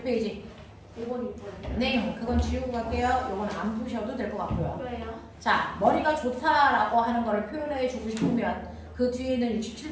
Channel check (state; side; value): identical; both; correlation 1.00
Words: 5번, 6번. 네, 그건 지우고 갈게요. 이건 안 푸셔도 될 것 같고요. 왜요? 자, 머리가 좋다라고 하는 거를 표현해 주고 싶으면 그 뒤에 있는